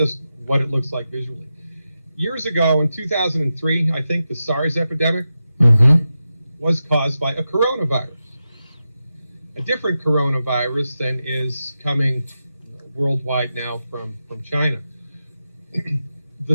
what it looks like visually. Years ago, in 2003, I think the SARS epidemic was caused by a coronavirus. A different coronavirus than is coming worldwide now from China. The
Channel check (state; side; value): inverted; both; correlation -0.90